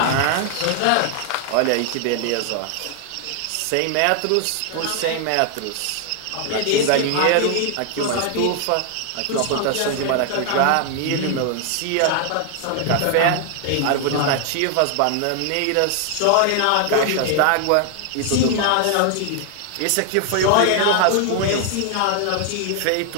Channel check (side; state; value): both; different; correlation 0.00